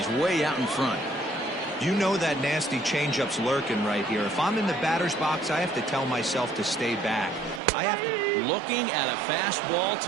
way out in front. You know that nasty changeup's lurking right here. If I'm in the batter's box, I have to tell myself to stay back. I have to. Looking at a fastball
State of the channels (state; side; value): drops out; left; at 7.6 s